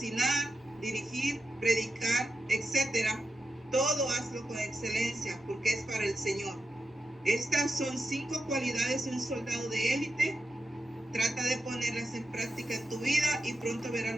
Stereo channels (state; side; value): normal; both; correlation 0.88